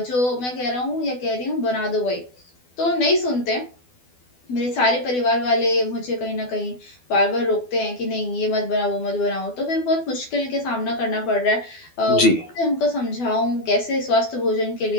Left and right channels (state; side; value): late; right; 12 ms